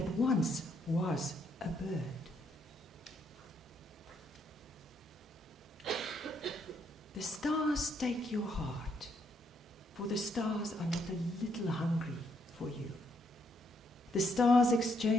once was a bird. The stars take your heart, for the stars are not a little hungry for you. The stars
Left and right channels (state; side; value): normal; both; correlation 0.73